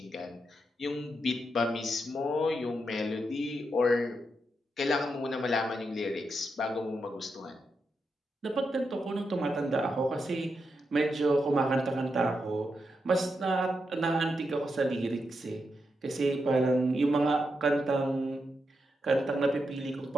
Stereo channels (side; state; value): both; normal; correlation 0.85